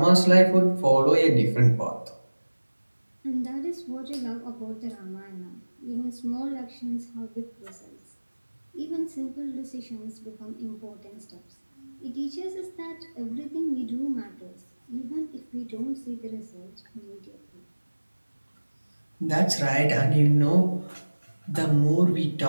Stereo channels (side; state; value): both; inverted; correlation -1.00